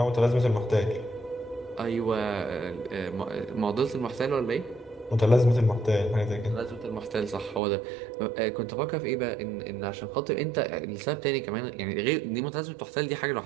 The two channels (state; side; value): drops out; left; at 7.6 s